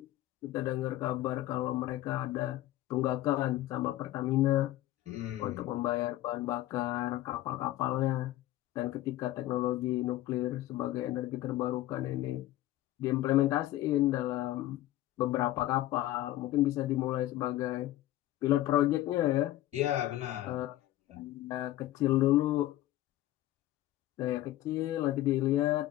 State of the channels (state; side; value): quieter; right; 15.0 dB